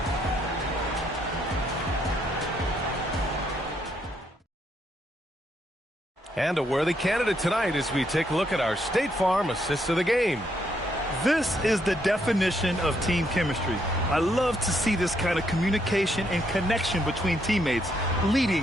And a worthy candidate tonight as we take a look at our State Farm assist of the game. This is the definition of team chemistry. I love to see this kind of communication and connection between teammates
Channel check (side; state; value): both; normal; correlation 0.74